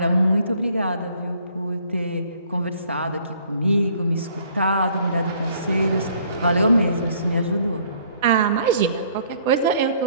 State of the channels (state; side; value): inverted; both; correlation -0.60